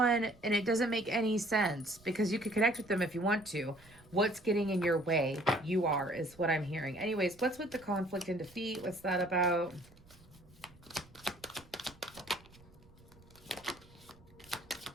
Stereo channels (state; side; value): noise; right; rumble, 25 dB below the sound